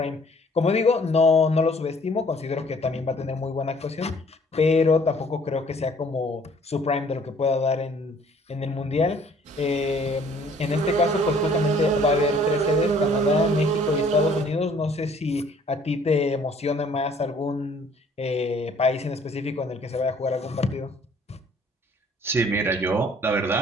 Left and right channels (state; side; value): normal; both; correlation 0.58